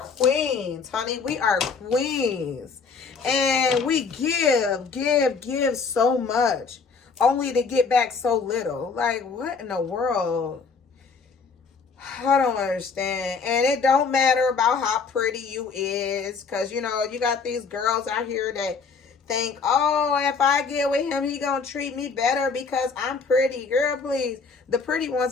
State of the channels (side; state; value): right; quieter; 5.1 dB